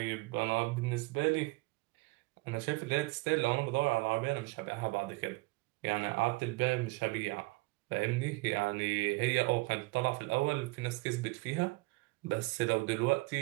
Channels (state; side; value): quieter; left; 23.6 dB